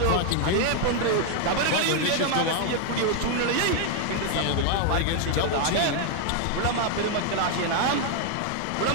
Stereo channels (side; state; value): both; different; correlation 0.00